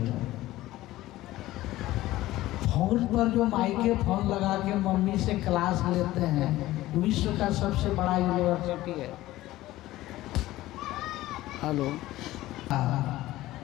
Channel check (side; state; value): right; quieter; 16.3 dB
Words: फोन पर जो माइके फोन लगा के मम्मी से क्लास लेते हैं, विश्व का सबसे बड़ा यूनिवर्सिटी है। हेलो,